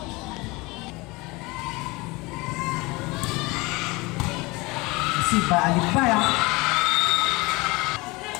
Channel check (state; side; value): quieter; right; 23.9 dB